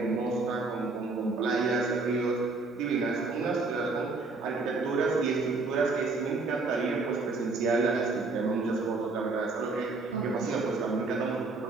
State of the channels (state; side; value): quieter; left; 3.7 dB